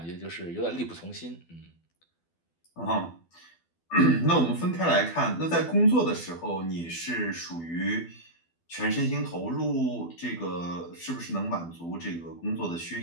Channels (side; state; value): right; late; 12 ms